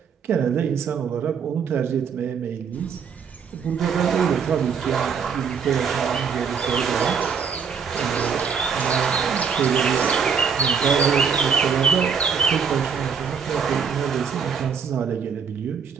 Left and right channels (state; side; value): quieter; left; 6.4 dB